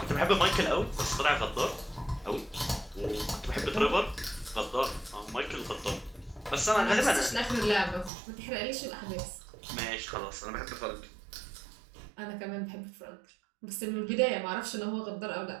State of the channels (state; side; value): drops out; left; at 8.1 s